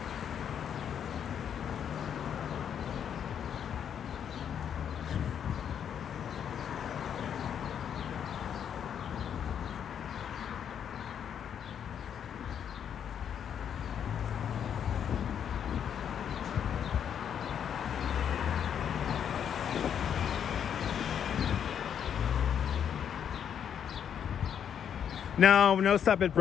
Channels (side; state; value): right; quieter; 8.5 dB